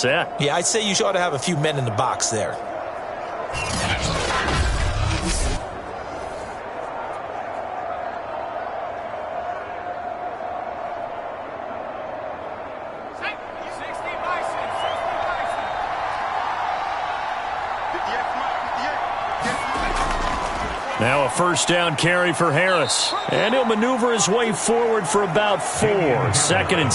Yeah, I'd say you ought to have a few men in the box there. Now a first down carry for Harris. And he'll maneuver his way forward for about 4. 2nd and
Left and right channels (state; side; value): identical; both; correlation 1.00